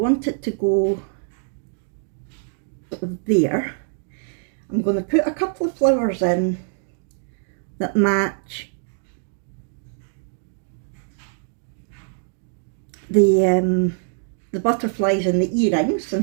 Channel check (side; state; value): left; silent; digital silence